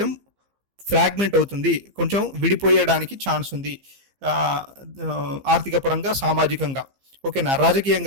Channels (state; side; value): late; left; 15 ms